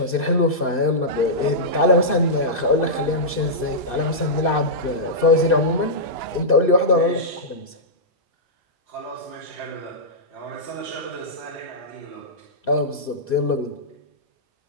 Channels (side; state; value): both; normal; correlation -0.13